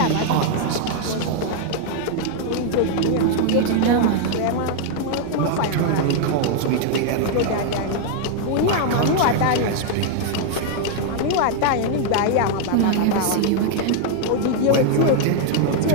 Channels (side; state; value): both; different; correlation 0.00